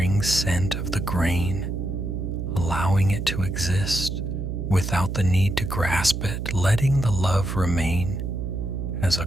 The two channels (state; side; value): noise; right; hum, 4 dB below the sound